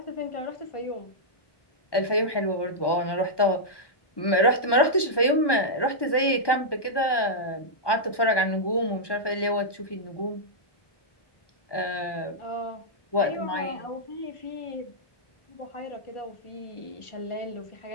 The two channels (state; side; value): late; right; 1.2 ms